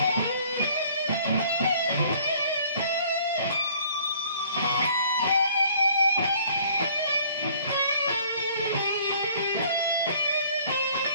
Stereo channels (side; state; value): both; inverted; correlation -0.57